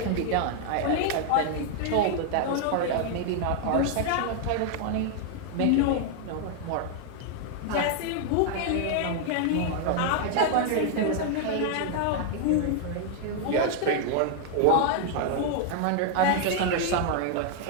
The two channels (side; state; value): both; different; correlation 0.00